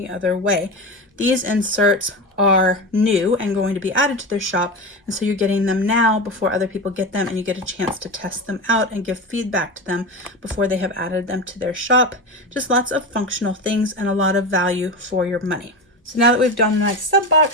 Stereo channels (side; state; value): both; normal; correlation 0.22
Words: other way. These inserts are new and going to be added to their shop, and so you're getting them now before other people get them, and you get a chance to test them out and give feedback to them before they have added them to their shop. Just lots of functional things and a lot of value for your money. So now that we've done my sub